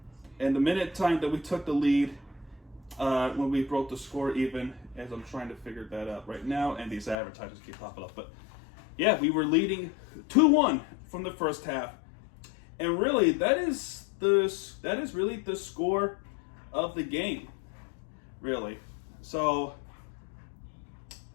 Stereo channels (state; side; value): drops out; right; at 7.2 s